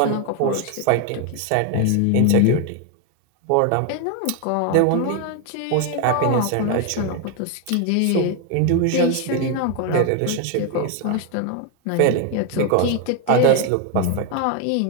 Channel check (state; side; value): different; both; correlation 0.01